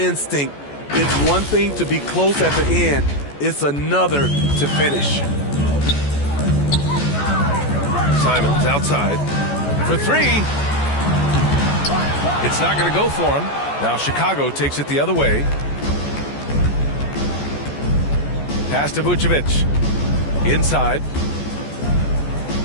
It's one thing to be close at the end. It's another to finish. Simons outside for 3. It's not going to go for him. Now Chicago takes it the other way. Pass to Vucevic. Inside.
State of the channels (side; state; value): right; late; 14 ms